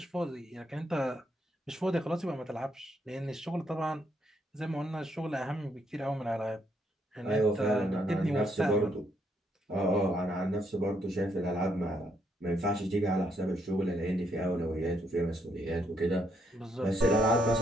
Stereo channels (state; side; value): normal; both; correlation 0.75